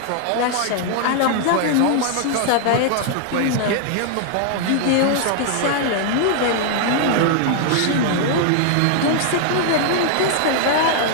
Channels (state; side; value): different; both; correlation -0.01